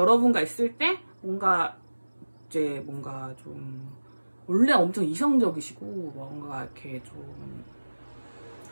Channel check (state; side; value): inverted; both; correlation -1.00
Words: 있을 때 뭔가 좀 원래 엄청 이성적이시고 뭔가 이렇게 좀